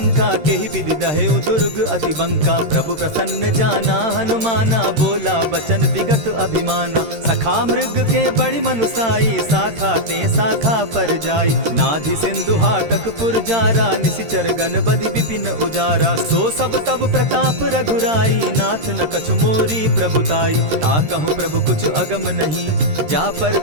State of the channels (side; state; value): left; late; 13 ms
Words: केहि विधि दहेउ दुर्ग अति बंका। प्रभु प्रसन्न जाना हनुमाना, बोला बचन विगत अभिमाना। सखा मृग के बड़ी मनुसाई, साखा ते शाखा पर जाई। नाधि सिंधु हाटक पुर जारा, निशिचर गण बदि विपिन उजारा। सो सब तब प्रताप रघुराई, नाथ न कछु मोरी प्रभुताई। ताकहु प्रभु कुछ अगम नहीं, जा पर